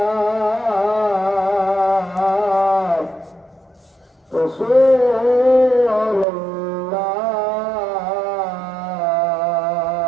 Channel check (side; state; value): left; drops out; at 6.2 s